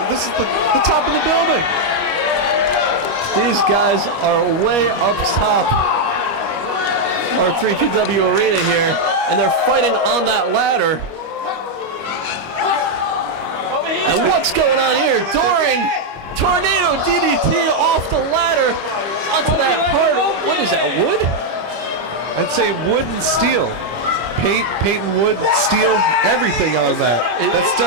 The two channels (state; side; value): late; left; 25 ms